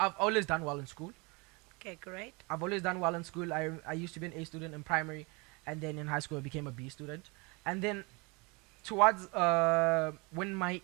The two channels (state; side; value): quieter; left; 28.1 dB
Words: always done well in school. Okay, great. I've always done well in school. I used to be an A student in primary, and then in high school I became a B student. And then towards when